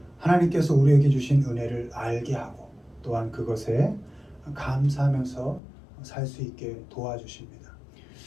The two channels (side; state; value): right; drops out; at 5.6 s